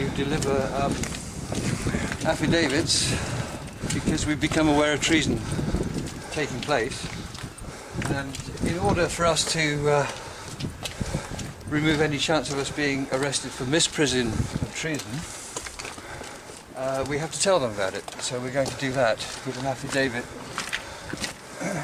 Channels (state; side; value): identical; both; correlation 1.00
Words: deliver affidavits because we've become aware of treason taking place. And in order for us to remove any chance of us being arrested for misprision of treason, we have to tell them about it. So we're going to do that with an affidavit.